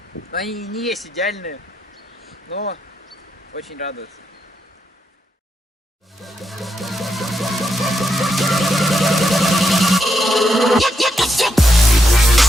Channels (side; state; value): both; normal; correlation 0.82